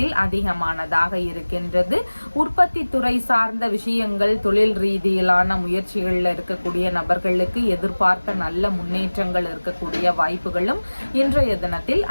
அதிகமானதாக இருக்கின்றது. உற்பத்தி துறை சார்ந்த விஷயங்கள், தொழில் ரீதியிலான முயற்சிகள்ல இருக்கக்கூடிய நபர்களுக்கு எதிர்பார்த்த நல்ல முன்னேற்றங்கள் இருக்கக்கூடிய வாய்ப்புகளும் இன்றைய தினத்தில்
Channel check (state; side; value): inverted; both; correlation -1.00